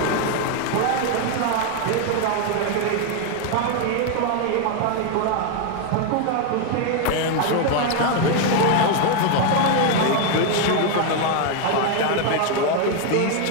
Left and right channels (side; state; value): both; different; correlation 0.01